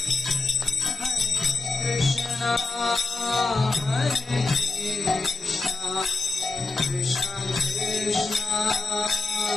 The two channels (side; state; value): right; quieter; 3.6 dB